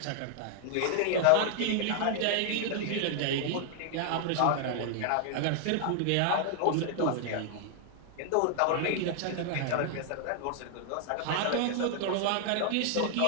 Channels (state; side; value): different; both; correlation 0.00